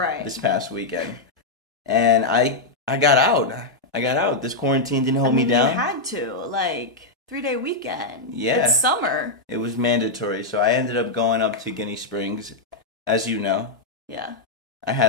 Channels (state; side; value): quieter; right; 3.1 dB